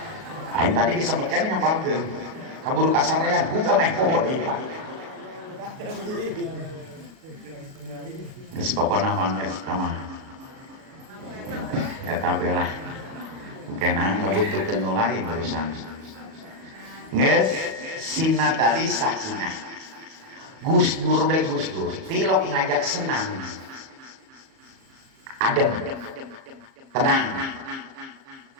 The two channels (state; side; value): late; left; 37 ms